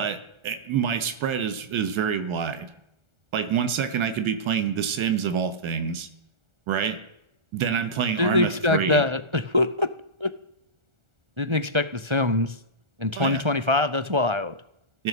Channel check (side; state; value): left; late; 1.4 ms